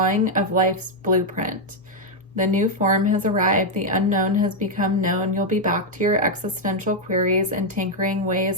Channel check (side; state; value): both; normal; correlation 0.00